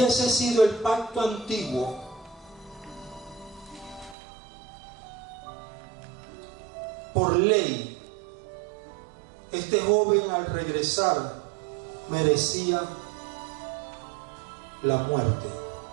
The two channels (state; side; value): drops out; left; at 4.2 s